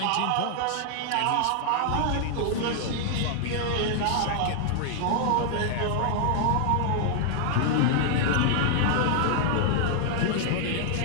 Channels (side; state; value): both; different; correlation 0.00